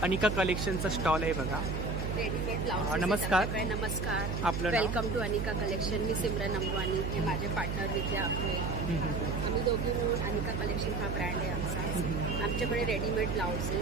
अनिका कलेक्शनचा स्टॉल आहे बघा. Readymade blouse. नमस्कार. नमस्कार. आपलं नाव? Welcome to Anika collection. मी सिमरन अंबानी, हे माझे पार्टनर विद्या आपले. आम्ही दोघी मिळून अनिका कलेक्शन हा ब्रँड आहे आमचा. आमच्याकडे readymade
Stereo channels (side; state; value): right; noise; hum, 2 dB below the sound